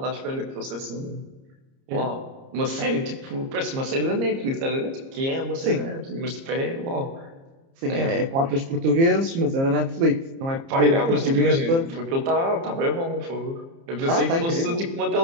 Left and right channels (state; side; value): late; left; 30 ms